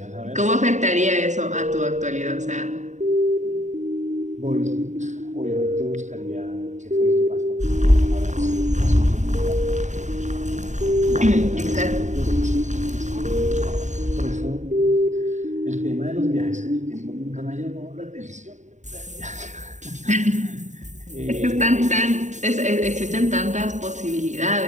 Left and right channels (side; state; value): left; late; 0.35 ms